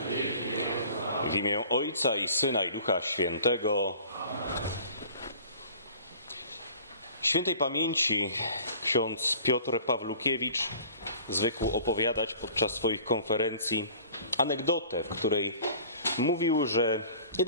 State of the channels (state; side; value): inverted; both; correlation -0.47